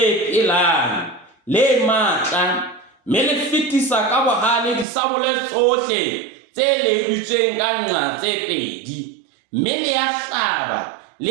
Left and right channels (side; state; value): left; drops out; at 4.9 s